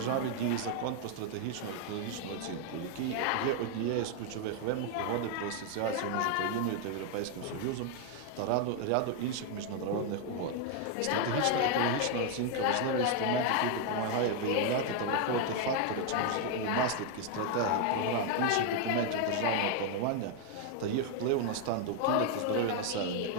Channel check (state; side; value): different; both; correlation 0.01